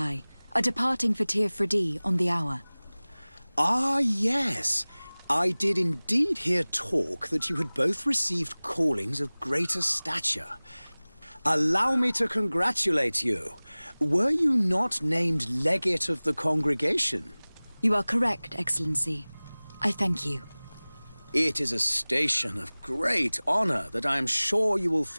are departing for Tir Freddy on the hour. Ah, yes. I did indeed hear talk that you had both received callings of greater stature. Allow me to congratulate you. Were you not named legate of the congregation? You are correct, Excellency. I thank you. It is a station of great honor that I am sure you will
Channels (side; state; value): both; inverted; correlation -1.00